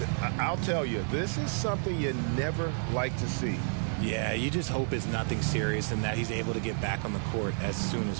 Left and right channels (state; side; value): silent; left; digital silence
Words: I'll tell you, this is something you never like to see. Yeah, you just hope it's nothing serious and that he's able to get back on the court as soon as